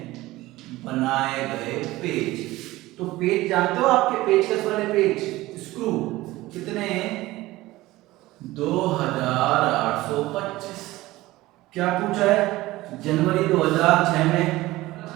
बनाए गए पेज। तो पेज जानते हो आपके पेज कैसे बने, पेज स्क्रू कितने, 2825। क्या पूछा है, जनवरी 2006 में,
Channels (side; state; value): left; quieter; 18.2 dB